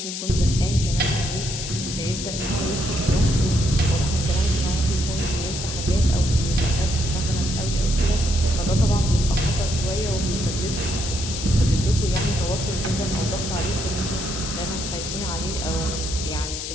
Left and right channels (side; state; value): left; noise; hiss, 6 dB below the sound